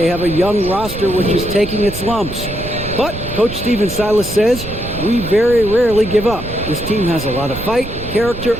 have a young roster which is taking its lumps. But Coach Stephen Silas says, we very rarely give up. This team has a lot of fight, character,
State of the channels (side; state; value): right; noise; rumble, 10 dB below the sound